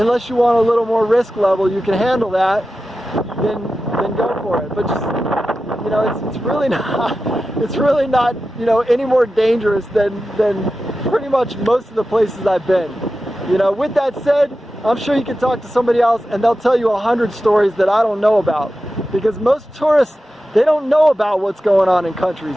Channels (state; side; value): normal; both; correlation 0.93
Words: you want a little more risk level, you can handle that, then go for it. But just, you know, it's really not, you know, any more dangerous than pretty much most of the places I've been. You know, with that said, I'm sure you can talk to somebody else and they'll tell you 100 stories that I don't know about. Because most tourists, they don't know about what's going on in countries.